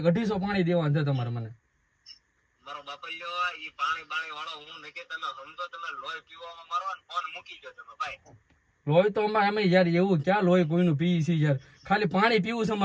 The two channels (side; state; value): both; identical; correlation 1.00